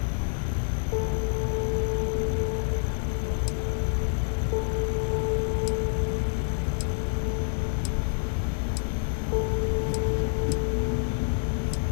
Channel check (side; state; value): right; silent; digital silence